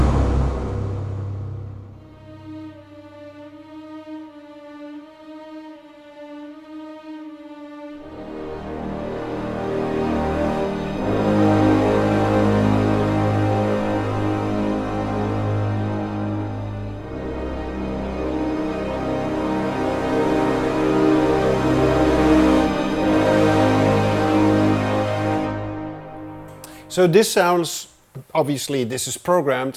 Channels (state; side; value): identical; both; correlation 1.00